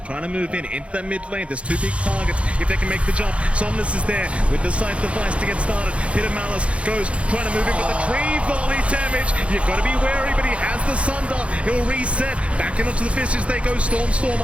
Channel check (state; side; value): late; left; 0.061 ms